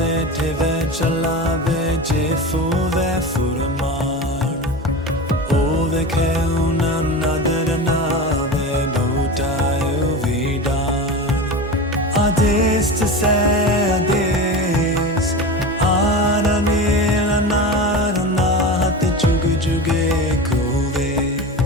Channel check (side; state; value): both; normal; correlation 0.27